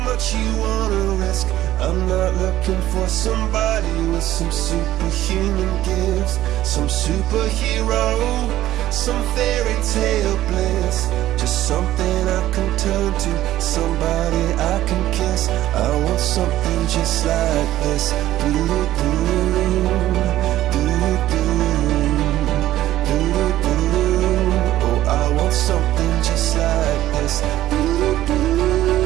much you wanna risk? I'm not looking for somebody with some superhuman gifts, some superhero, some fairy tale bliss. Just something I can turn to, somebody I can kiss. I want something just like this. Oh, I want something just like this.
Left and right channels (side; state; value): left; quieter; 14.1 dB